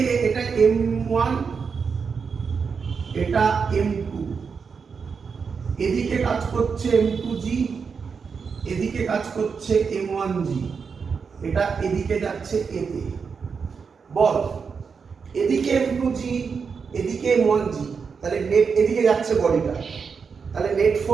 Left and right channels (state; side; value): quieter; left; 5.7 dB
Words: এটা m1, এটা m2, এদিকে কাজ করছে m2g, এদিকে কাজ করছে m1g, এটা এদিকে যাচ্ছে a তে। বল এদিকে m2g, এদিকে m1g, তাহলে নেট এদিকে যাচ্ছে বডিটা, তাহলে নেট